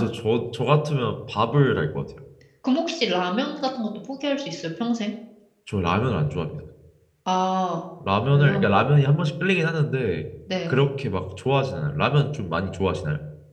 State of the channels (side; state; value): both; identical; correlation 1.00